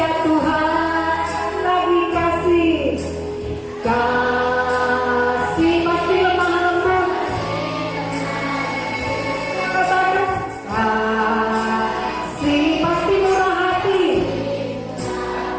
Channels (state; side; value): identical; both; correlation 1.00